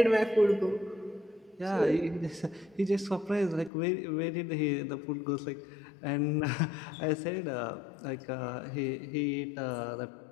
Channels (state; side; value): drops out; right; at 3.7 s